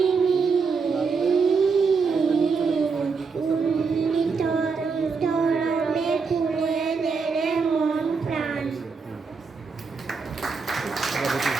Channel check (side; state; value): left; quieter; 5.0 dB